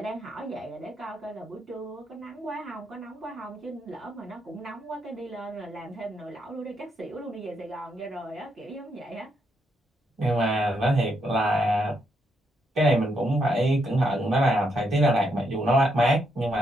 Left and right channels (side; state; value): both; normal; correlation 0.78